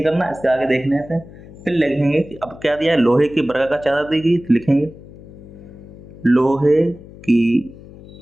करना, इसके आगे देखने हैं। फिर लिखेंगे कि अब क्या दिया है, लोहे की वर्गाकार चादर दी गई, तो लिखेंगे लोहे की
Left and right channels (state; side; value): noise; left; hum, 18 dB below the sound